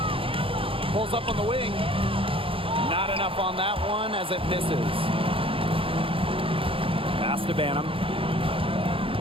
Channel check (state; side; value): late; left; 0.26 ms